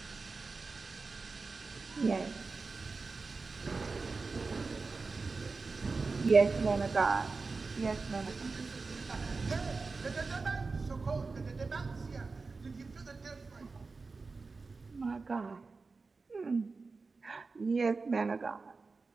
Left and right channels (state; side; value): quieter; left; 4.1 dB